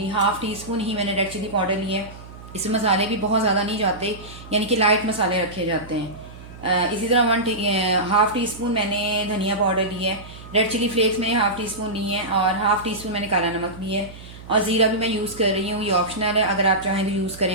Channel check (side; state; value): right; noise; hum, 16 dB below the sound